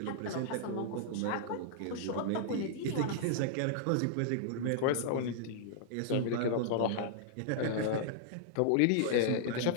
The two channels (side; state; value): both; different; correlation -0.01